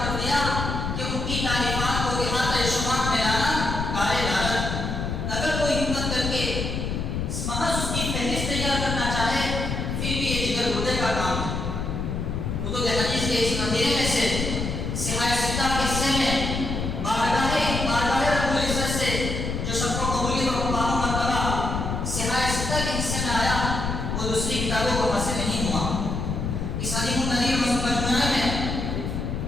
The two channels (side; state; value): left; noise; rumble, 2 dB below the sound